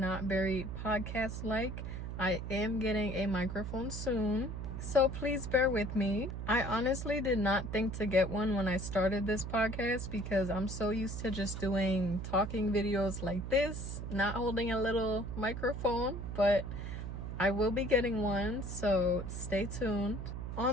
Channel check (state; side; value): noise; right; hum, 6 dB below the sound